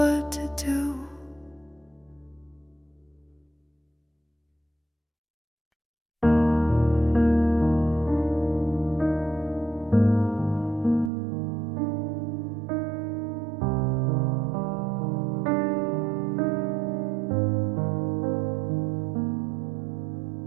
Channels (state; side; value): drops out; left; at 11.1 s